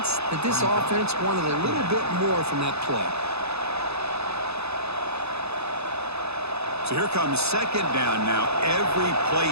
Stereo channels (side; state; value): left; late; 0.79 ms